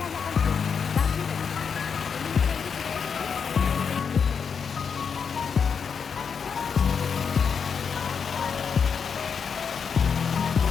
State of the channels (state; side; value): quieter; right; 6.4 dB